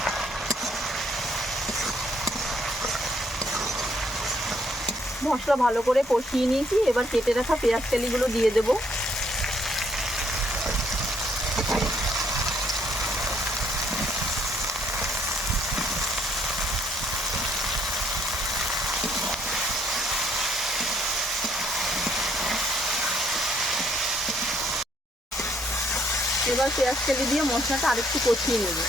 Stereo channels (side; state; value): both; normal; correlation 0.68